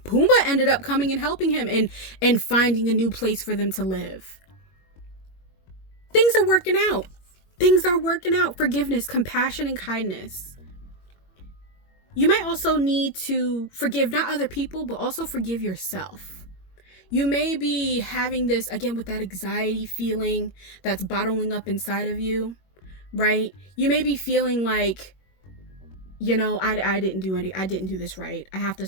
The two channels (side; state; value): right; late; 21 ms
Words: Pumbaa ended up coming and helping him and finding a new place for them to live. Things are working out. Things are working out. Forgiveness, compassion, and kindness. You might also need to forgive not other people, but also forgive yourself. You may be having this, again, with that anxiety feeling that's bottling up inside of you, right? You may be feeling like, you know, I didn't do this right. I have to